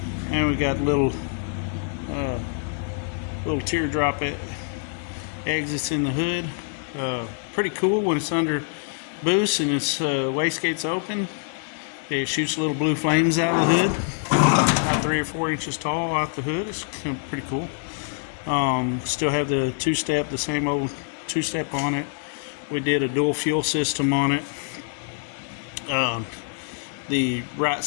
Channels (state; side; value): silent; right; digital silence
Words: and we got little teardrop exits in the hood. Pretty cool when it's under boost and its wastegate's open. It shoots little blue flames out of the hood, about 3 or 4 inches tall out the hood. It's pretty cool. Still have the two-step, the same old two-step on it. We did a dual fuel system on it. The right